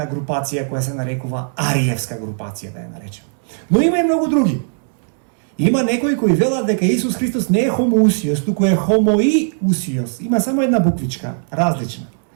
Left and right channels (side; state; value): left; silent; digital silence